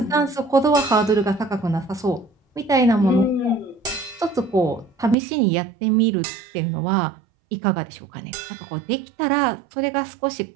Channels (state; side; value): drops out; left; at 5.2 s